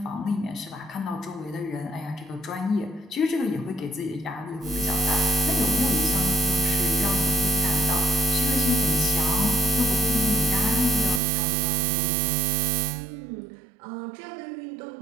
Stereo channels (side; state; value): left; drops out; at 11.2 s